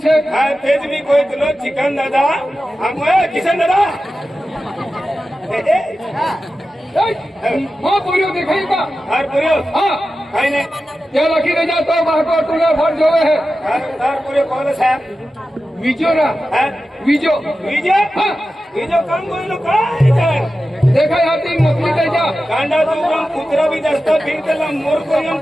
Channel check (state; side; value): normal; both; correlation 0.93